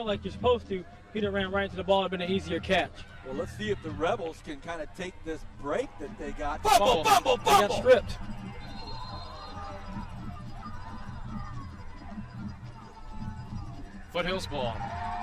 like you're supposed to, he'd have ran right into the ball. It would have been an easier catch. Well, let's see if the Rebels can kind of take this break that they got. Fumble! They got stripped. Foothill's ball.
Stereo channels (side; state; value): both; identical; correlation 1.00